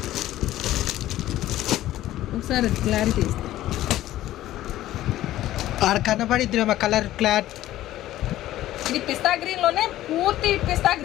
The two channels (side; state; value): right; quieter; 14.4 dB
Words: ఒకసారి క్లారిటీ ఇస్తాను. ఆడ కనబడిద్ది కలర్ క్లాత్. ఇది పిస్తా గ్రీన్ లోనే పూర్తి పిస్తా